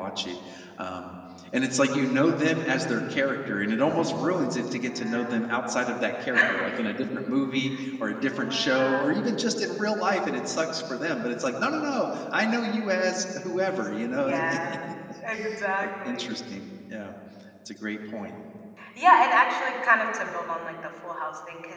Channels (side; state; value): both; identical; correlation 1.00